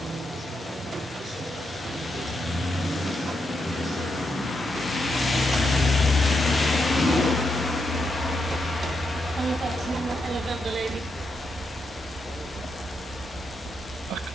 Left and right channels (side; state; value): both; normal; correlation 0.83